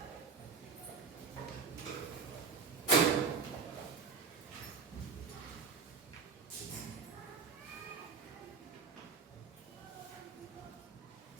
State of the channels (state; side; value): quieter; left; 5.6 dB